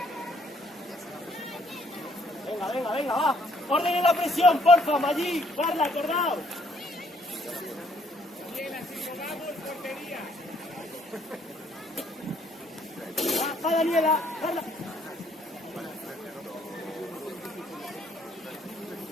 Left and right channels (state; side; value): normal; both; correlation 0.66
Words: Venga, venga, venga, va. Ordenen la presión, porfa, Maggi. Carla, acordaos. Va, Daniela. Carla.